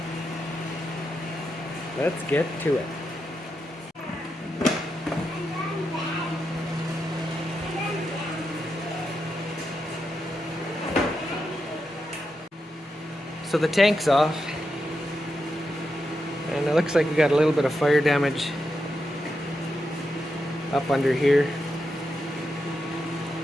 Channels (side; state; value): both; normal; correlation 0.86